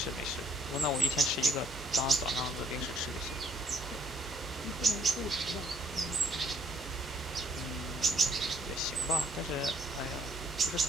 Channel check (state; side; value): normal; both; correlation 0.65